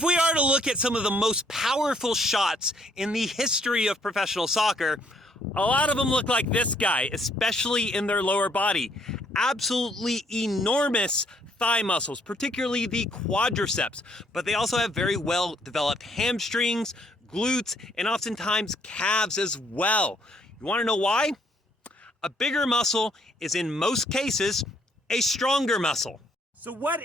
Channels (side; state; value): both; normal; correlation 0.67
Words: we are to look at some of the most powerful shots in the history of professional soccer, a lot of them look like this guy, especially in their lower body. Absolutely enormous thigh muscles, particularly the quadriceps, but they also have very well developed hamstrings, glutes, and oftentimes calves as well. You want to know why? A bigger muscle is in most cases a stronger muscle. So what